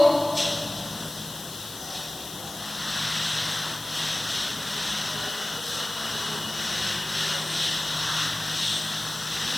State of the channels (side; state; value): left; noise; hiss, 11 dB below the sound